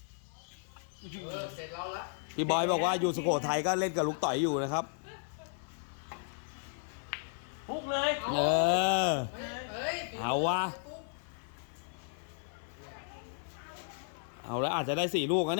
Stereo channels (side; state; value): right; silent; 55 dB below the other